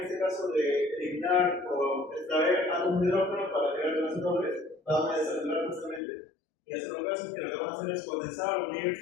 este caso de eliminar o extraer átomos de hidrógeno para llegar a los dobles, van a desactivar justamente. Y las cetonas que lo que van a hacer es condensar o unir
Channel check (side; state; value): right; drops out; at 6.0 s